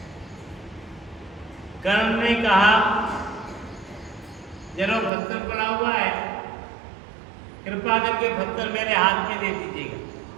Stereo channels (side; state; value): left; drops out; at 5.1 s